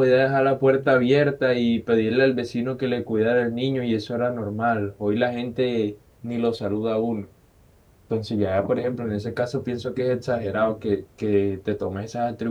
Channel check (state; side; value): identical; both; correlation 1.00